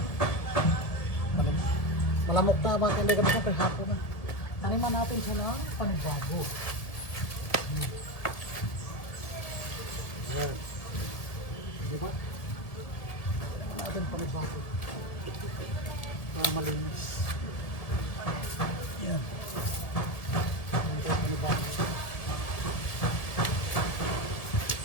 Malamok na mga kanday kami sa hapon na. Taniman natin siya ng panibago. Wow. Diba? Taniman natin panibago. Para malinis. Yan. Taniman panibago.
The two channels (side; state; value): right; late; 1.7 ms